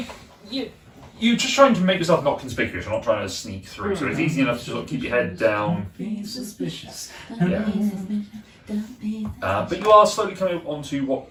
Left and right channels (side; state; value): both; identical; correlation 1.00